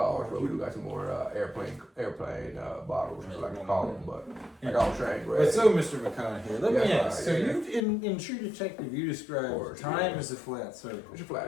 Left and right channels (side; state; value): right; drops out; at 7.8 s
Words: but we do got some more airplane bottles, I like to call them. But like I was saying, But so, Mr. McConaughey, let me ask. So you, in True Detective, you describe time as a flat circle. It's a